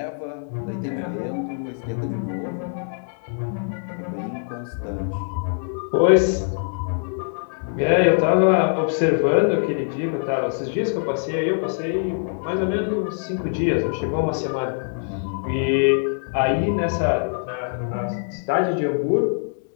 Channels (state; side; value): silent; right; digital silence